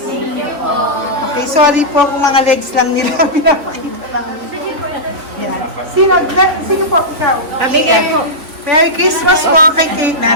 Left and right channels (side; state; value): left; late; 3.2 ms